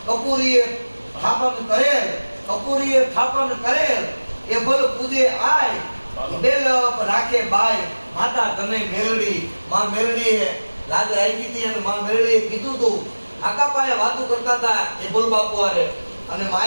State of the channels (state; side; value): inverted; both; correlation -1.00